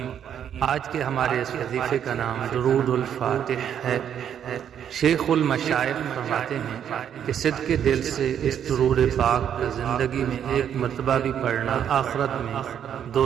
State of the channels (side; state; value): left; quieter; 9.1 dB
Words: आज के हमारे इस वजीफ़े का नाम दुरूदुल फातिह है। शेखुल मशाइख फरमाते हैं कि सिद्क़े दिल से इस दुरूद पाक का ज़िंदगी में एक मरतबा भी पढ़ना आखिरत में